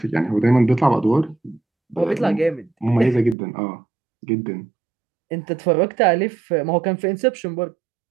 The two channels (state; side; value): drops out; left; at 3.4 s